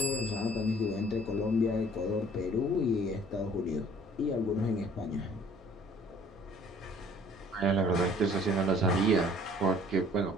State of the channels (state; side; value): normal; both; correlation 0.55